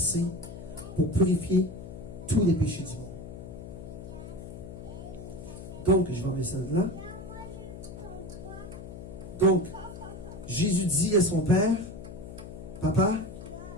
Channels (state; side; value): noise; left; hum, 12 dB below the sound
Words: pour purifier tous les péchés du monde. Donc, je vais enlever ça de là. Donc, Jésus dit à son Père, Papa,